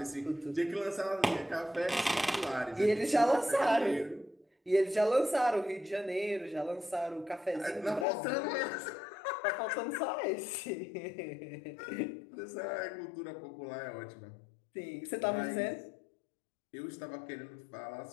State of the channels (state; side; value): drops out; right; at 8.1 s